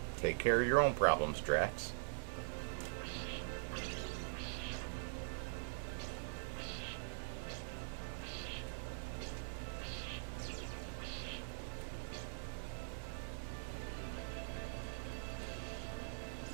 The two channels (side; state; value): left; silent; digital silence